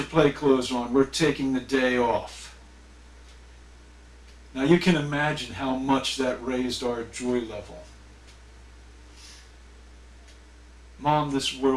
play clothes on. We're taking the day off." Now you can imagine how much that raised our joy level. Mom, this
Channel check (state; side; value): identical; both; correlation 1.00